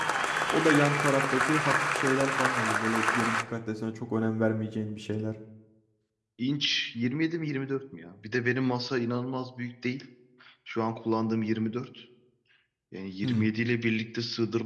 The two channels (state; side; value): identical; both; correlation 1.00